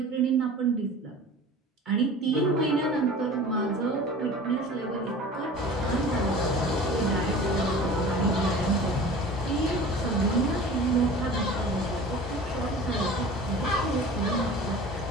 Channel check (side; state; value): both; normal; correlation 0.40